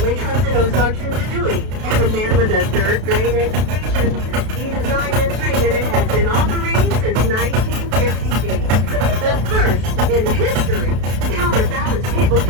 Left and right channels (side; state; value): left; late; 32 ms